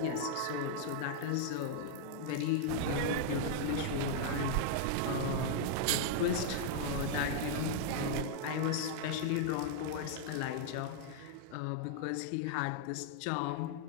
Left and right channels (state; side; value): different; both; correlation -0.01